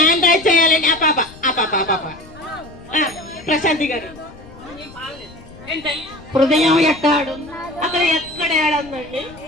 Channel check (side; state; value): left; noise; rumble, 21 dB below the sound